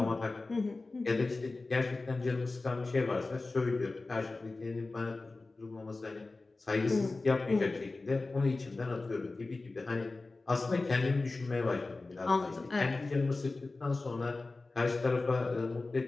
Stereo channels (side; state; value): right; quieter; 3.4 dB